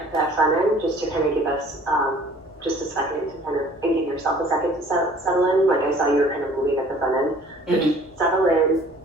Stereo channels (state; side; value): normal; both; correlation 0.52